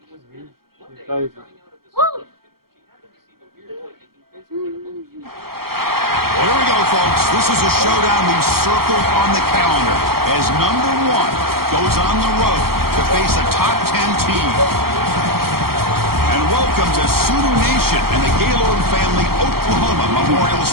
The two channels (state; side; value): late; left; 0.94 ms